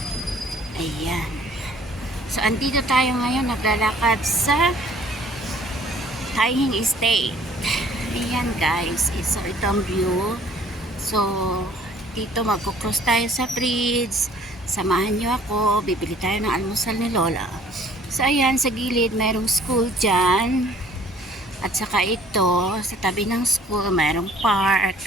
Ayan. So, andito tayo ngayon naglalakad sa Taihing Estate. Ayan guys, so ito ang view. So, dito magkukross tayo sa bridge. Samahan niyo ako, bibili tayo ng almusal ni Lola. So ayan, sa gilid mayroong school dyan. At saka ito, sa tabi ng school mayroong park.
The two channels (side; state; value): both; normal; correlation 0.55